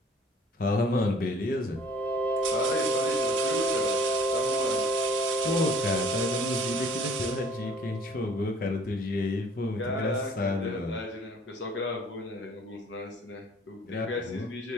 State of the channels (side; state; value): both; normal; correlation 0.53